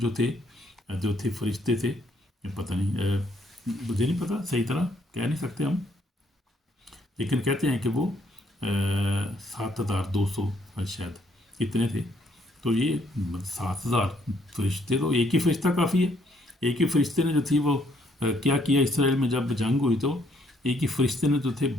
تھے فرشتے تھے، پتہ نہیں، مجھے نہیں پتہ صحیح طرح کہہ نہیں سکتے ہم، لیکن کہتے ہیں کہ وہ 7200 شاید اتنے تھے. تو یہ 7000 فرشتے، تو ایک ہی فرشتہ کافی ہے. ایک ہی فرشتے نے جو تھی وہ کیا کیا اسرائیل میں جب جنگ ہوئی، تو ایک ہی فرشتے نے جو تھے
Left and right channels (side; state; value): both; normal; correlation 0.69